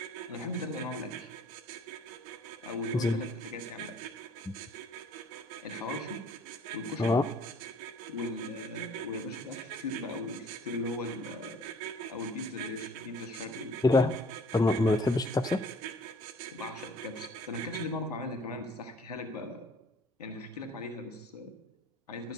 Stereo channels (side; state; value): both; normal; correlation 0.55